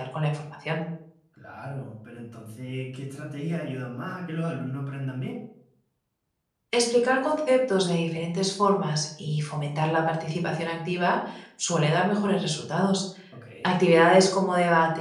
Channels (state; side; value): identical; both; correlation 1.00